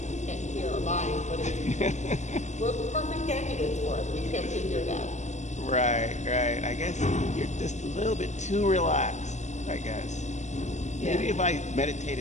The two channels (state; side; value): late; right; 0.34 ms